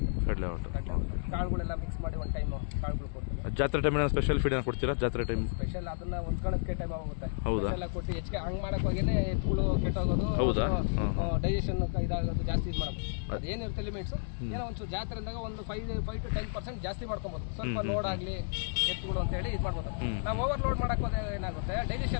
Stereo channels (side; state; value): right; silent; digital silence